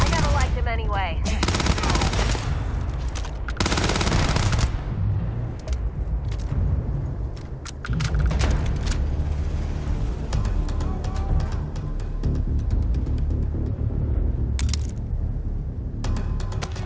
never liked him anyway.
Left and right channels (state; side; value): identical; both; correlation 1.00